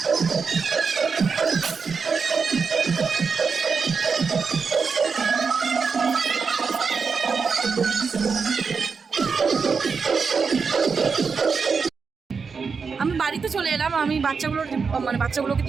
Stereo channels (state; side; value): quieter; left; 5.3 dB